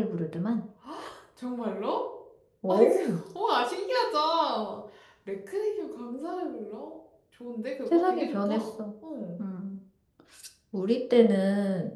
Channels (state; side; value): identical; both; correlation 1.00